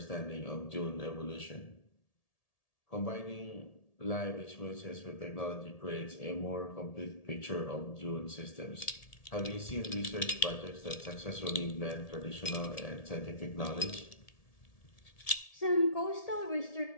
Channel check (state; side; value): late; right; 1.7 ms